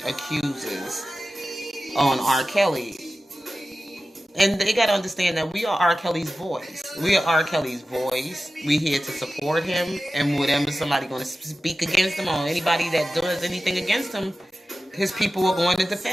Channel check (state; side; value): normal; both; correlation 0.95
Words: accusers on R. Kelly. And they got to understand that we are R. Kelly's voice. We are R. Kelly's voice. We're here to support him. And whenever somebody going to speak against him, or anybody that does anything against him, his people are going to